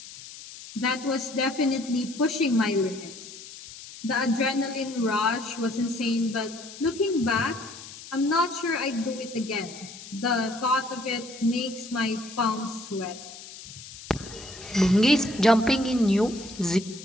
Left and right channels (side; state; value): left; noise; hiss, 15 dB below the sound